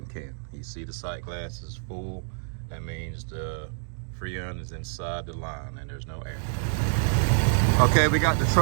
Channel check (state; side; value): silent; left; digital silence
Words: can. You see the sight glass is full. That means the Freon is inside the line and there's no air. Okay, we got the